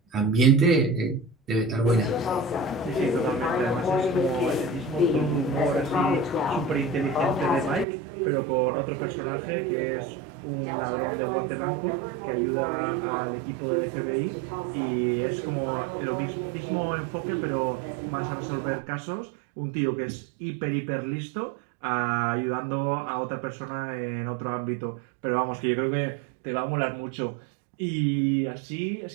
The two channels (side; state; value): left; drops out; at 7.9 s